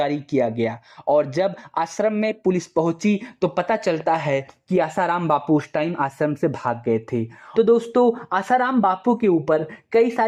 किया गया और जब आश्रम में पुलिस पहुंची तो पता चलता है कि आसाराम बापू उस टाइम आश्रम से भाग गए थे। तो दोस्तों आसाराम बापू के ऊपर कई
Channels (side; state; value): both; identical; correlation 1.00